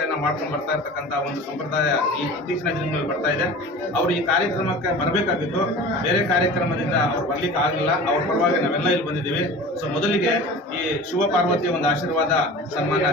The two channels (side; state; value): both; normal; correlation 0.37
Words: ಮಾಡ್ಕೊಂಡು ಬರ್ತಾ ಇರ್ತಕ್ಕಂಥ ಒಂದು ಸಂಪ್ರದಾಯ ಈ ಇತ್ತೀಚಿನ ದಿನಗಳಲ್ಲಿ ಬರ್ತಾ ಇದೆ. ಅವರು ಈ ಕಾರ್ಯಕ್ರಮಕ್ಕೆ ಬರಬೇಕಾಗಿತ್ತು, ಬೇರೆ ಕಾರ್ಯಕ್ರಮದಿಂದ ಅವ್ರು ಬರ್ಲಿಕ್ಕೆ ಆಗಲಿಲ್ಲ. ಅವ್ರ ಪರವಾಗಿ ನಾವೆಲ್ಲ ಇಲ್ಲಿ ಬಂದಿದ್ದೀವಿ. ಸೊ ಮೊದಲಿಗೆ ಈ ಶಿವ ಪಾರ್ವತಿಯ ಒಂದು ಆಶೀರ್ವಾದ